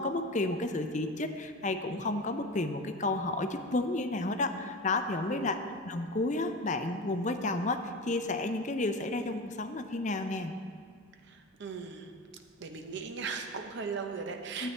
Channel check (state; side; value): normal; both; correlation 0.28